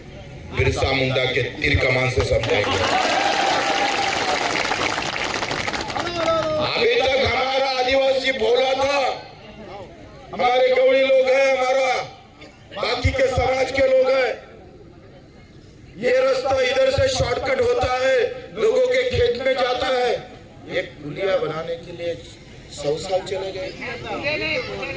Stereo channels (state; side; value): identical; both; correlation 1.00